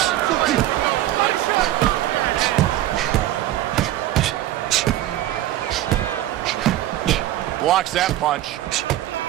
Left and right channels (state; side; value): quieter; left; 14.0 dB